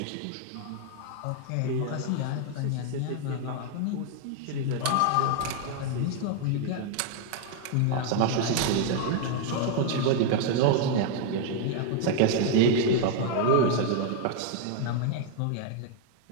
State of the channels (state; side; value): different; both; correlation 0.00